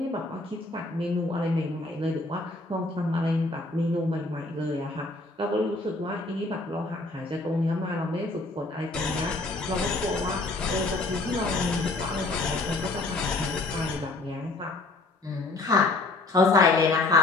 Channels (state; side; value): quieter; right; 3.1 dB